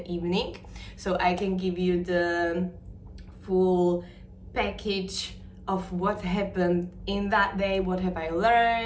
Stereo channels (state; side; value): identical; both; correlation 1.00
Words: evening so I can give you the full package of what happened in that day, what have I